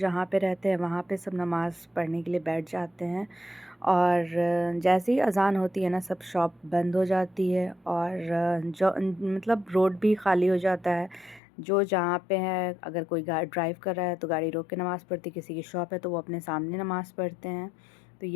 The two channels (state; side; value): drops out; right; at 11.4 s